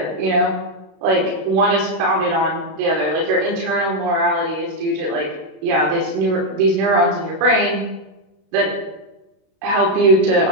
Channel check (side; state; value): left; late; 32 ms